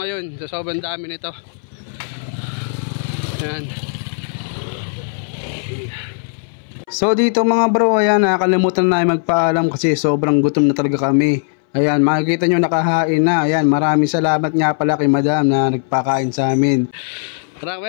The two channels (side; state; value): right; silent; 63 dB below the other